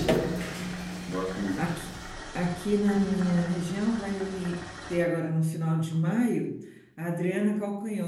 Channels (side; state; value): both; identical; correlation 1.00